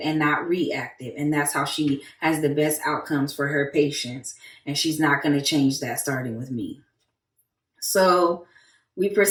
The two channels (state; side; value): identical; both; correlation 1.00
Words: and not reactive. And that's how she has the best outcomes for her patients. And she's not going to change that starting with me. So we